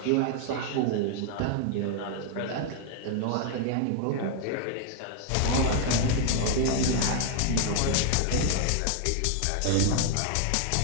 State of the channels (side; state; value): both; different; correlation 0.00